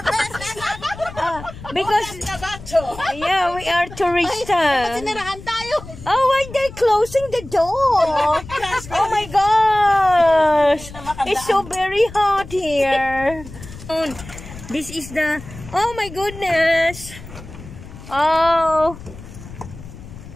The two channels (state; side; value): noise; left; rumble, 15 dB below the sound